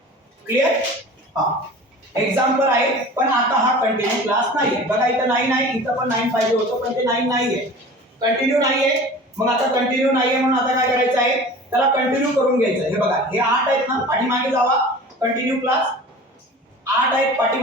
क्लिअर? हा एक्झाम्पल आहे पण आता हा कंटिन्यू क्लास नाहीये. बघा इथं 9 आहे इथं पण 9 पाहिजे होतं पण ते 9 नाहीये कंटिन्यू नाहीये. मग आता कंटिन्यू नाहीये म्हणून आता काय करायचं आहे त्याला कंटिन्यू करून घ्यायचं. हे बघा हे 8 आहेत ना, पाठीमागे जावा, कंटिन्यू क्लास 8 आहेत,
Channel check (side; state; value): both; normal; correlation 0.40